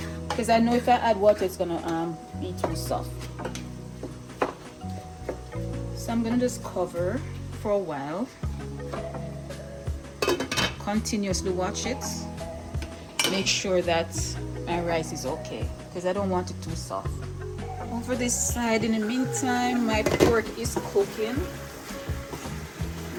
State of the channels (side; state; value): both; identical; correlation 1.00